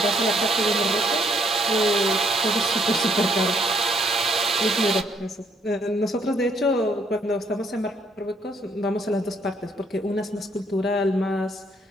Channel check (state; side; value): normal; both; correlation 0.68